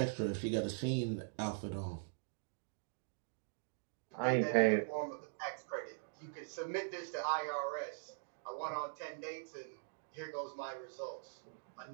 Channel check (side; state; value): left; silent; digital silence